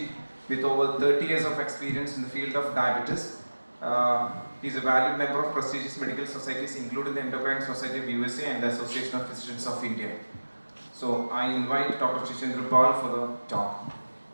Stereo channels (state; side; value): inverted; both; correlation -1.00